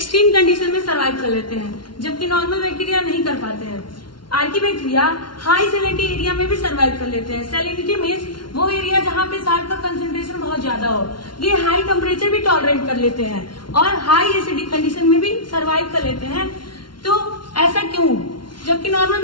condition में survive कर लेते हैं, जबकि normal bacteria नहीं कर पाते हैं। Archie bacteria high salinity area में भी सर्वाइव कर लेते हैं। सैलिनिटी मीन्स वो एरिया जहाँ पे साल्ट का कंसेंट्रेशन बहुत ज्यादा हो। ये हाई टेम्परेचर भी टॉलरेट कर लेते हैं और हाई एसिडिक कंडीशन में भी सर्वाइव कर लेते हैं। तो ऐसा क्यों, जबकि नॉर्मल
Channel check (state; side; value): late; right; 0.72 ms